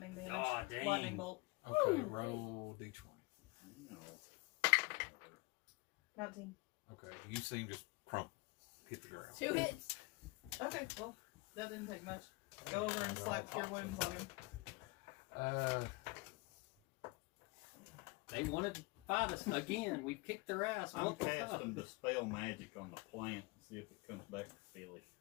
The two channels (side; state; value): right; quieter; 25.9 dB